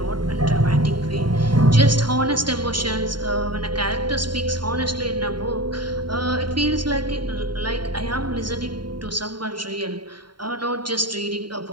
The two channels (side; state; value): left; late; 0.72 ms